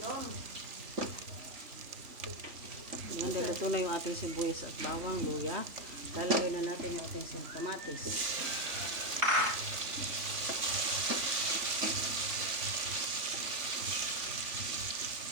na yung ating sibuyas at bawang, luya. Lalagay na natin yung ating kamatis.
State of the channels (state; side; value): late; left; 3.4 ms